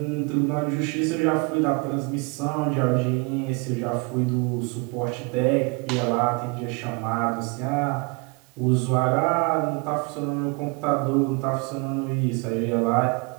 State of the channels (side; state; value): left; quieter; 30.1 dB